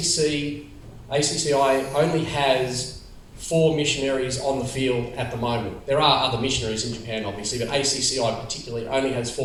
only has 4 missionaries on the field at the moment. There are other missionaries in Japan, obviously, but ACCI particularly only has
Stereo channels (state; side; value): identical; both; correlation 1.00